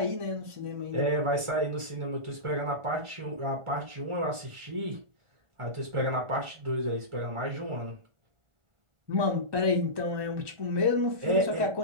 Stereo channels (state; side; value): late; left; 1.4 ms